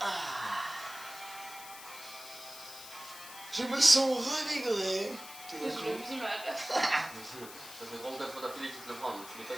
Je me sens revigoré. Je le vis mal. Ça fait 34 fois d'affilée que tu te le prends, donc tu l'as pas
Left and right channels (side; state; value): left; noise; hiss, 14 dB below the sound